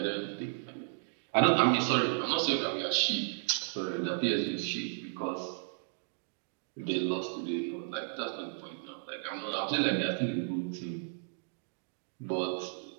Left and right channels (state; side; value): silent; left; digital silence